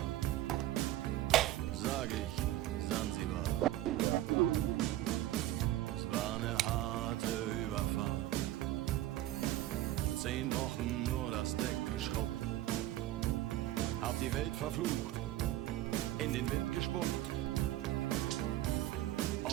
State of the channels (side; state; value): left; quieter; 14.5 dB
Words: sag ich Sansibar. Es war eine harte Überfahrt, 10 Wochen nur das Deck geschrubbt, hab die Welt verflucht, in den Wind gespuckt